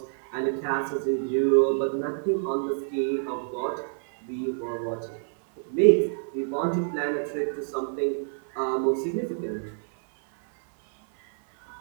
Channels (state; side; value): silent; left; 60 dB below the other